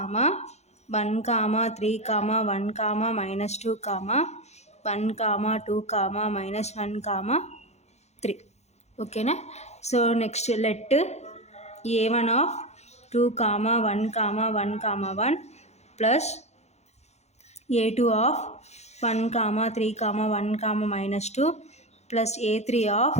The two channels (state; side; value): late; right; 0.32 ms